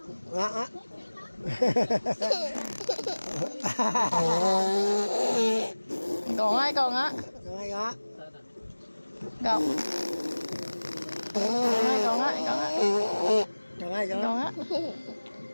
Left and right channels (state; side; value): inverted; both; correlation -1.00